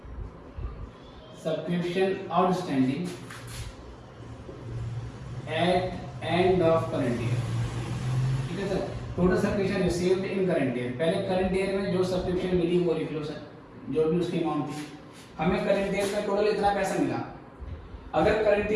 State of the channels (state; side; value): identical; both; correlation 1.00